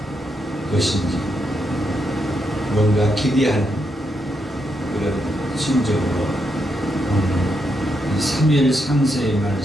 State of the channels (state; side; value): normal; both; correlation 0.81